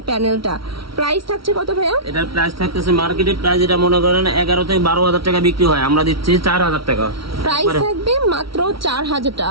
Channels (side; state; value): left; late; 0.75 ms